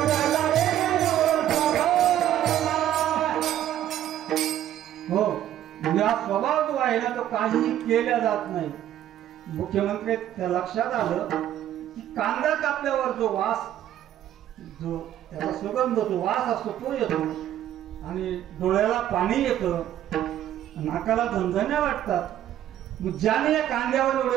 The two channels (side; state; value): left; quieter; 11.7 dB